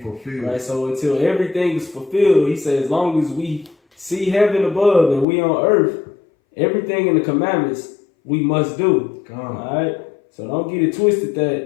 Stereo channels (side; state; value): right; drops out; at 5.2 s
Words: Right, so until everything is fulfilled, he says, as long as we see heaven above and we on earth, everything in the commandments we must do. All right? So don't get it twisted